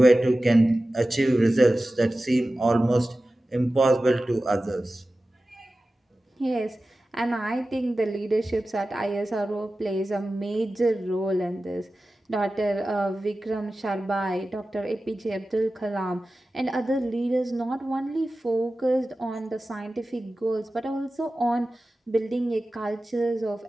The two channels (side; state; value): both; normal; correlation 0.95